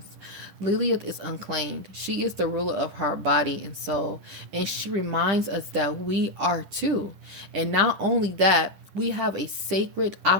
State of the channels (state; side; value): late; left; 10 ms